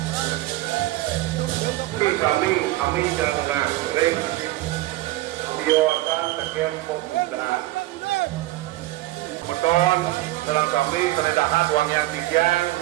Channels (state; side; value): quieter; left; 17.3 dB